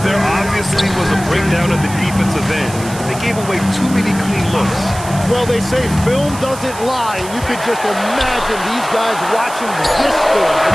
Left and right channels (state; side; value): noise; right; hiss, 14 dB below the sound